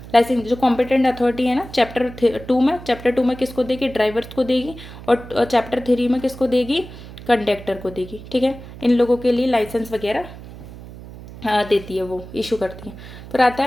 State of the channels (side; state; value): right; noise; hum, 15 dB below the sound